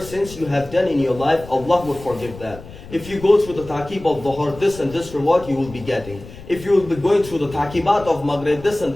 you have done in your life, Allah would forgive that. If you go through the taqib of Dhuhr, this and this reward you will be getting. If you will be going through the taqibat of Maghrib, this and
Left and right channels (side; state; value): left; noise; rumble, 16 dB below the sound